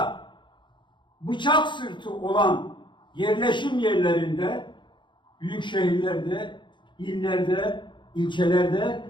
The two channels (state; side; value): late; right; 0.23 ms